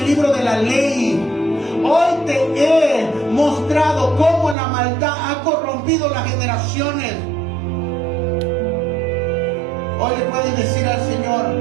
libro de la ley. Hoy te he mostrado cómo la maldad ha corrompido las generaciones. Hoy le puedes decir al Señor:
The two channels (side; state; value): left; drops out; at 4.5 s